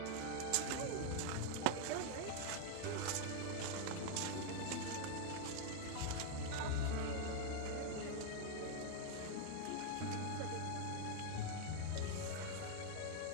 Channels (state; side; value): different; both; correlation 0.00